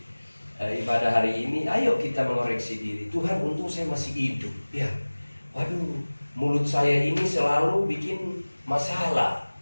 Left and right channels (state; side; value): inverted; both; correlation -1.00